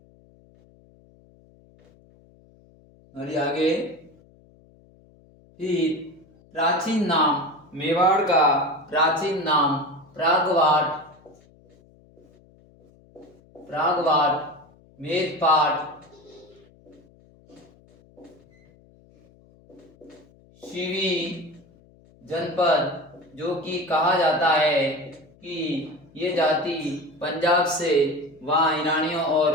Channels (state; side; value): noise; left; hum, 28 dB below the sound